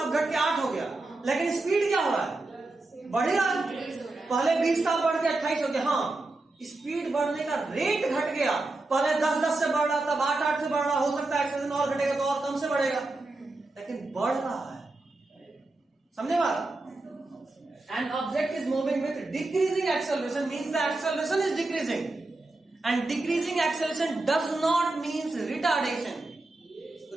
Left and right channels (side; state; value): left; quieter; 3.0 dB